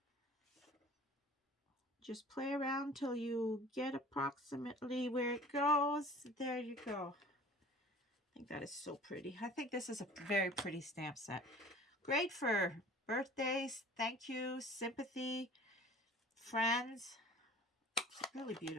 Just play around till you get approximately where it goes. There you go. I think that is so pretty. I think this is a very pretty stamp set. Great for birthdays, thank you, sympathy, friends. It's a really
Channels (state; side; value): normal; both; correlation 0.46